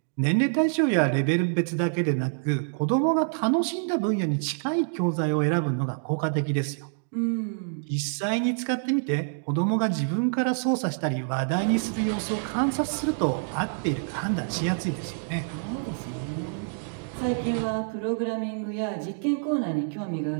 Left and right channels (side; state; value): left; silent; digital silence